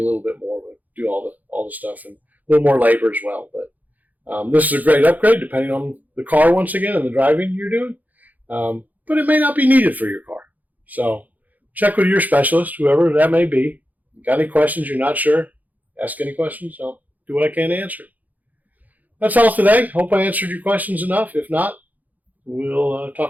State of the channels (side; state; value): left; late; 0.080 ms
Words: little bit more, but do all the stuff and a little more labor as well. But this is a great upgrade depending on the car once again and the driving you're doing. But it may not be needed for your car. So check with your specialist, whoever that may be. Got any questions you're not sure? Ask any questions. I'll do what I can to answer. That's all today. Hope I answered your questions enough. If not, we'll